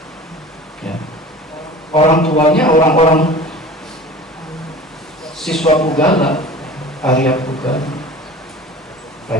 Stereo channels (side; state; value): both; normal; correlation 0.40